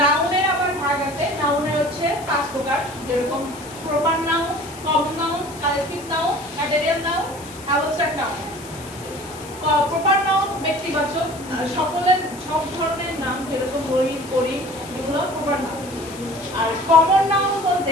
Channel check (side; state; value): left; noise; hiss, 18 dB below the sound